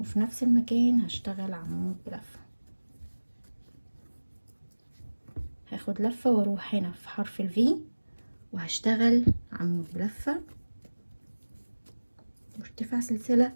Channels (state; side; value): inverted; both; correlation -1.00